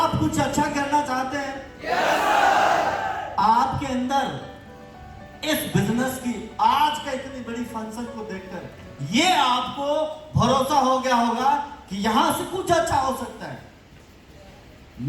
कुछ अच्छा करना चाहते हैं? आपके अंदर इस बिजनेस की आज का इतनी बड़ी फंक्शन को देखकर ये आपको भरोसा हो गया होगा कि यहां से कुछ अच्छा हो सकता है।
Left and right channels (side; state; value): both; identical; correlation 1.00